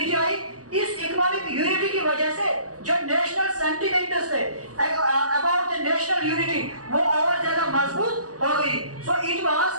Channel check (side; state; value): left; late; 0.67 ms